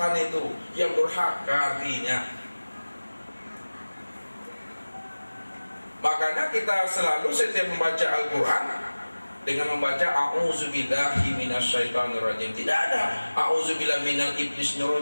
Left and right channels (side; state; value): both; inverted; correlation -1.00